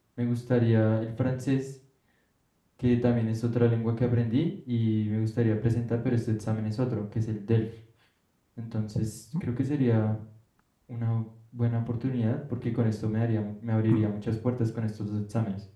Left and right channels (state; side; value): identical; both; correlation 1.00